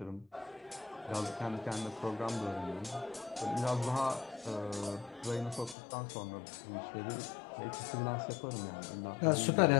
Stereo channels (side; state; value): right; drops out; at 5.8 s